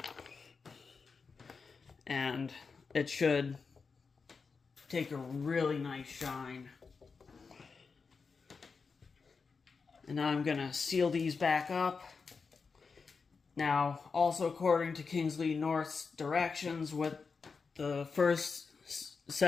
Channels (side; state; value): right; quieter; 5.0 dB